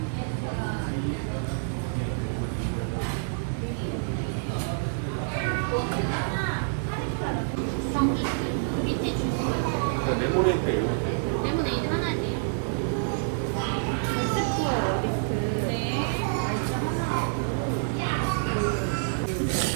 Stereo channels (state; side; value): silent; left; 60 dB below the other